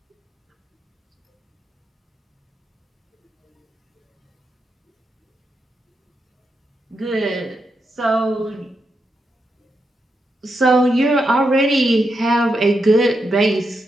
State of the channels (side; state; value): both; normal; correlation 0.84